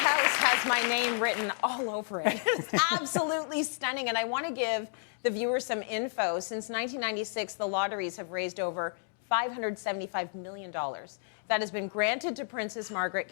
has my name written all over it. It's absolutely stunning, and I want to give the viewers some info. Since 1996, the lotteries have raised over $575 million. That has been granted to Princess Margaret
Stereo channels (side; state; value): right; silent; digital silence